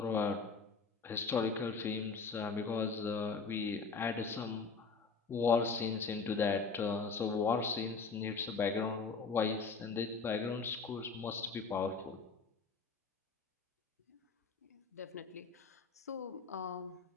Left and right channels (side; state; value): right; quieter; 4.8 dB